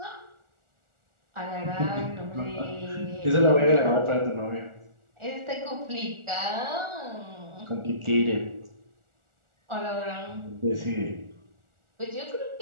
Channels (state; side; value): late; left; 1.4 ms